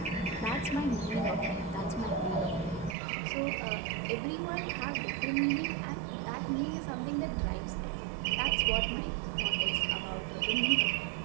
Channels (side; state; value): left; drops out; at 3.0 s